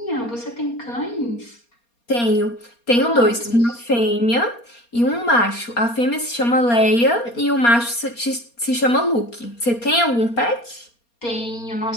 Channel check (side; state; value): right; late; 4.3 ms